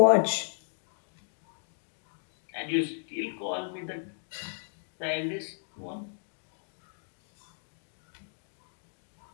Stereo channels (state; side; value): silent; right; digital silence